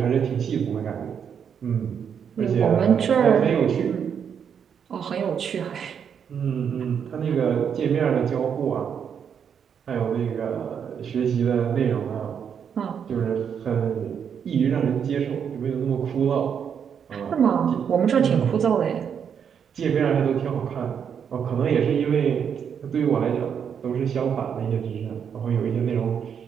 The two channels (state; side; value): quieter; left; 7.6 dB